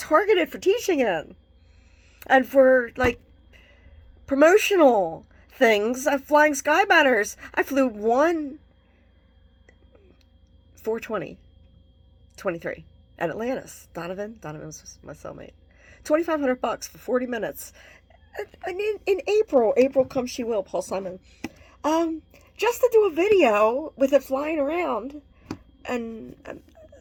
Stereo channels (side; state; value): both; identical; correlation 1.00